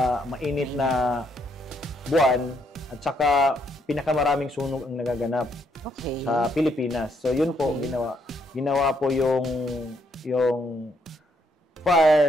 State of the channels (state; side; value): normal; both; correlation 0.73